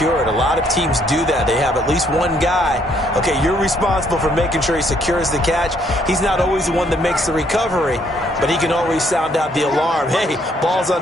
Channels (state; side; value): normal; both; correlation 0.68